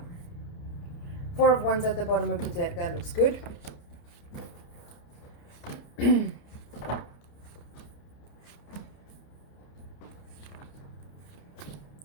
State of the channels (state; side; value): late; right; 29 ms